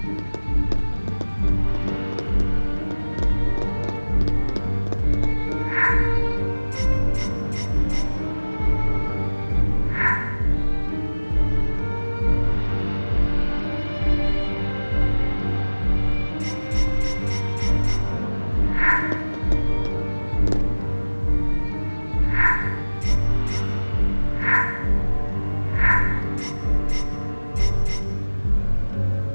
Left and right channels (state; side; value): inverted; both; correlation -1.00